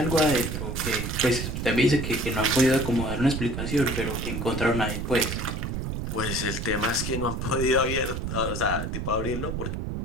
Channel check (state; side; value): noise; right; rumble, 4 dB below the sound